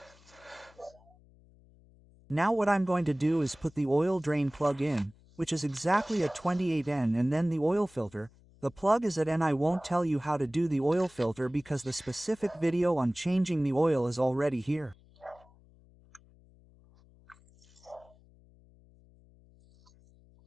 Now what I'm going to do is put the oil drain plug in, which is exactly at 28N, and then the oil filter. The plug is at N. I won't tell you how to do the oil filter because the specific video on changing the oil is already here.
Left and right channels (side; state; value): left; noise; hum, 27 dB below the sound